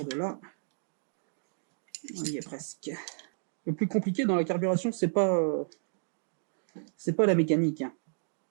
de là. On y est presque. Le plus compliqué dans la carburation, c'est pas la mécanique, hein.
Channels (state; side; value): silent; left; digital silence